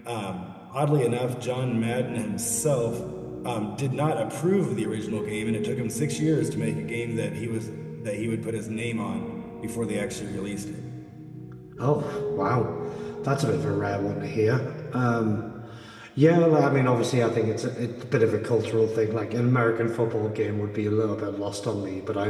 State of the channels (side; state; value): both; identical; correlation 1.00